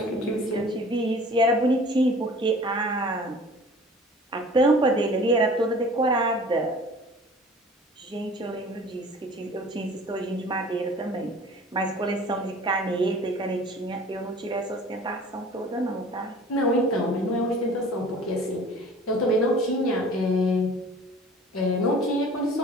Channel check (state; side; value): normal; both; correlation 0.46